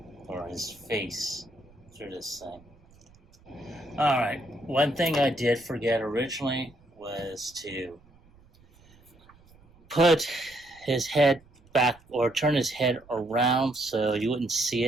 or his face through this thing. Alright, one thing I did forget originally was to put his head back or turn his head around so you wouldn't see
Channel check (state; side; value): noise; right; rumble, 28 dB below the sound